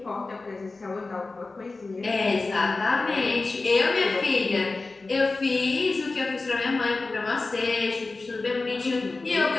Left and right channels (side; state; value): right; quieter; 3.6 dB